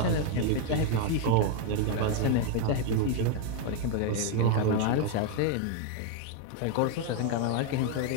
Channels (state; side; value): different; both; correlation 0.00